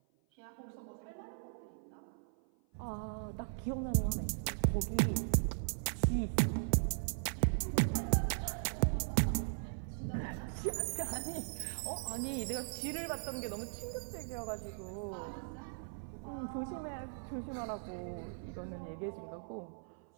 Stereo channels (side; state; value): left; silent; 52 dB below the other